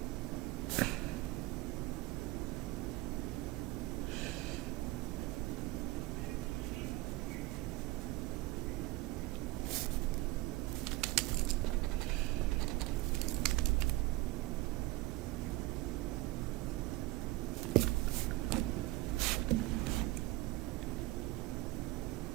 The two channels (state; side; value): quieter; left; 19.2 dB